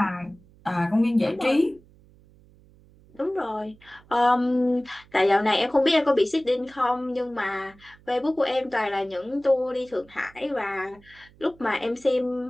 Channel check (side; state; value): right; noise; hum, 27 dB below the sound